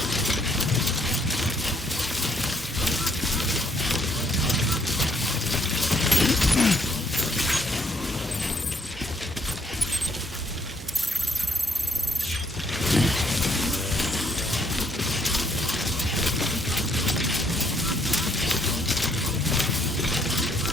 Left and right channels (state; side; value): normal; both; correlation 0.68